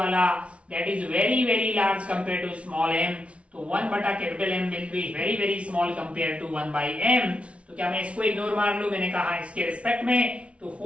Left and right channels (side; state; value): left; late; 0.062 ms